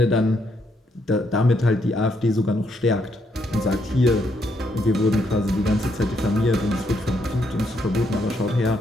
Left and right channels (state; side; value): normal; both; correlation 0.75